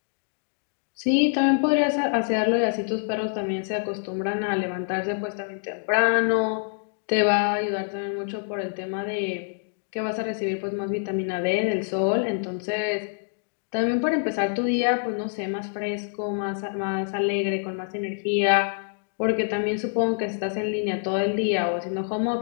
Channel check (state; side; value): silent; right; digital silence